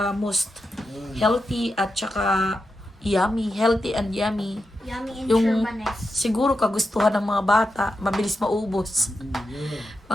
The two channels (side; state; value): both; normal; correlation 0.88